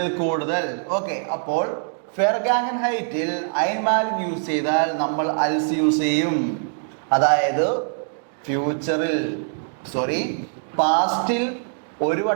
കൂടുതൽ. ഓക്കെ, അപ്പോൾ ഫെർഗാംഗൻഹൈറ്റിൽ ഐൻമാലിക് യൂസ് ചെയ്താൽ നമ്മൾ അൽസ് യൂസ് ചെയ്യും. അതായത് പാസ്റ്റിൽ ഒരു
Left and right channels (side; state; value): left; silent; digital silence